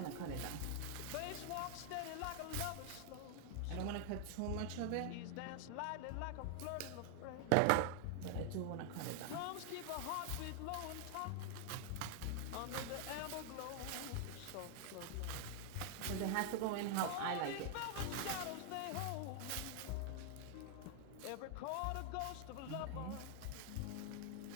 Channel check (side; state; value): both; different; correlation 0.00